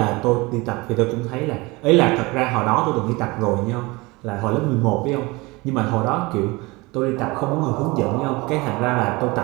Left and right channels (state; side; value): quieter; left; 23.8 dB